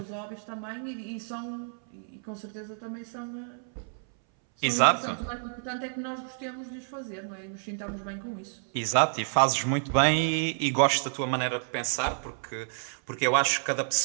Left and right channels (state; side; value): silent; left; 58 dB below the other